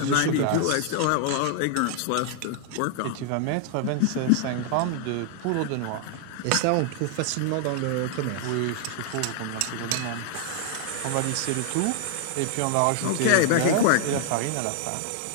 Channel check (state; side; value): different; both; correlation 0.00